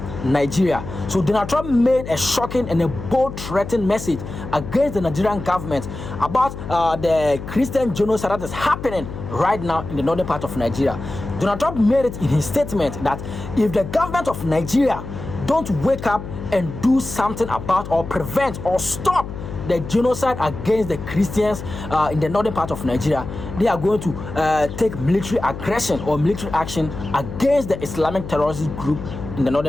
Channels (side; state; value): left; noise; hum, 9 dB below the sound